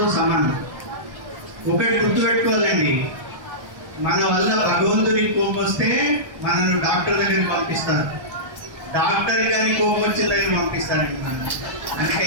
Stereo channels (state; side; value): late; left; 1.2 ms